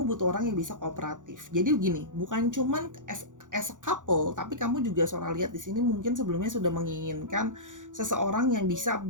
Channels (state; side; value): late; left; 0.87 ms